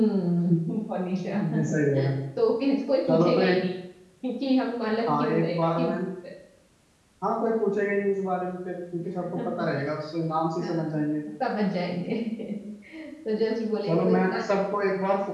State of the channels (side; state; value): both; identical; correlation 1.00